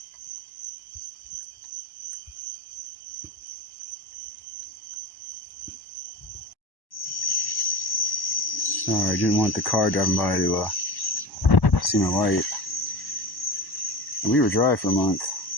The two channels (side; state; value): right; late; 1.1 ms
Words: Sorry, I didn't want the car driving by to see my light. And we were dry for a month.